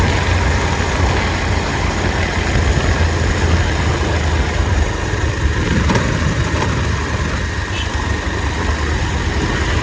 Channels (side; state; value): both; identical; correlation 1.00